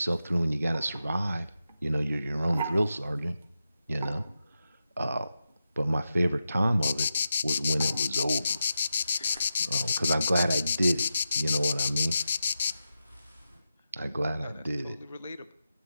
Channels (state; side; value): inverted; both; correlation -0.89